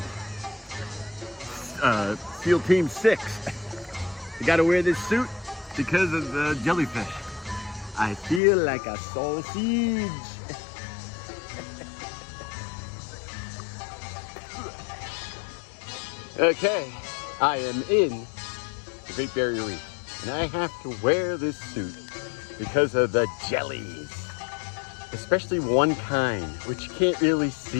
SEAL Team 6. You gotta wear this suit because of the jellyfish. I feel like a sausage. Okay, I am in the Great Barrier Reef, and I have to wear this suit because of the jellies. Especially one kind, which you can't really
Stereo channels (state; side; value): drops out; right; at 8.4 s